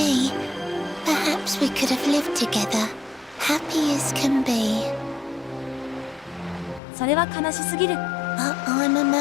perhaps we could have lived together, happy as can be. それは悲しすぎる。 But I'm a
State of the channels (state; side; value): drops out; right; at 6.8 s